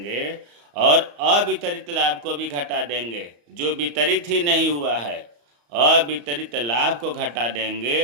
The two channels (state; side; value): late; left; 34 ms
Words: और अवितरित लाभ को भी घटा देंगे, जो वितरित ही नहीं हुआ है, अवितरित लाभ को घटा